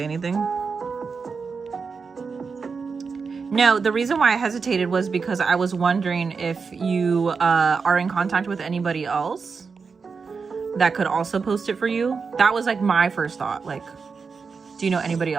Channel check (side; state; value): left; quieter; 5.2 dB